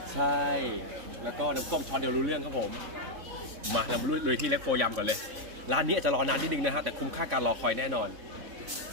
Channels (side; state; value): left; late; 3.7 ms